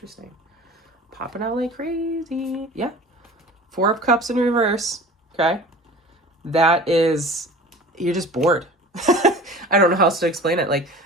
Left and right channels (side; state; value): both; normal; correlation 0.41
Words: Popping out like crazy. Yeah. Four of Cups in reverse. Okay. That is, you're just bored. I don't know how else to explain it. Like